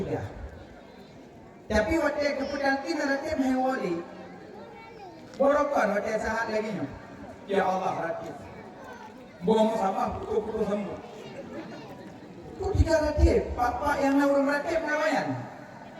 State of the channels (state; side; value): identical; both; correlation 1.00